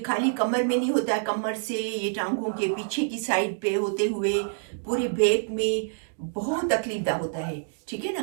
खाली कमर में नहीं होता, कमर से ये टांगों के पीछे की साइड पे होते हुए पूरी बैक में बहुत तकलीफदा होता है। ठीक है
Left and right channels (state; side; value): silent; left; digital silence